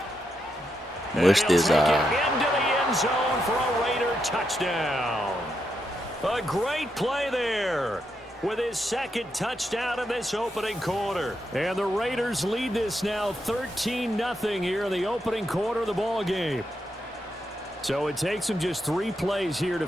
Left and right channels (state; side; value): normal; both; correlation 0.82